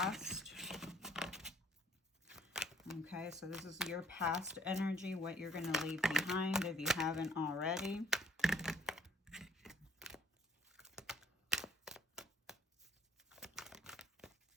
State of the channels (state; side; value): normal; both; correlation 0.60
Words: Okay, so this is your past energy, what you're going to leave behind if you haven't already.